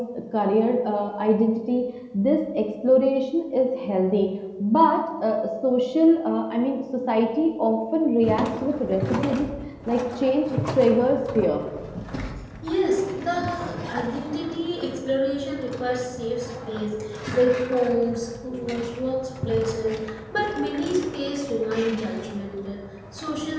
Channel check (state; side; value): identical; both; correlation 1.00